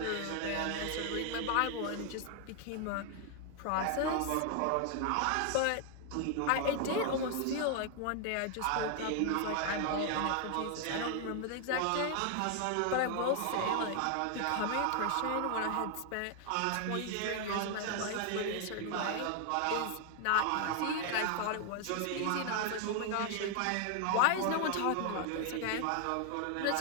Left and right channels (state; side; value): different; both; correlation 0.00